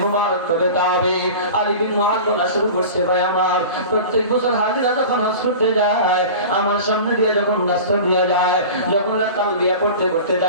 মুবারক তবে তাবে আলী বিন মুআয বলা শুরু করছে, ভাই আমার প্রত্যেক বছর হাজিরা যখন হজ করতে যায় আমার সামনে দিয়ে যখন রাস্তা দিয়ে যায়, যখন তালবিয়া পড়তে পড়তে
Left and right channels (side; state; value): both; inverted; correlation -0.35